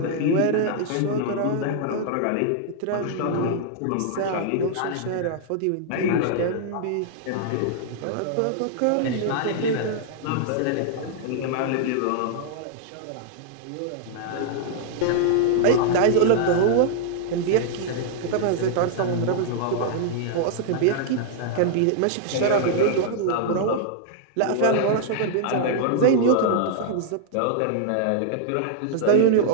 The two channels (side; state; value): both; different; correlation -0.01